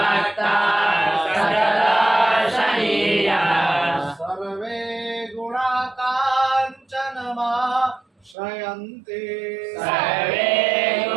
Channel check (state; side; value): drops out; left; at 8.3 s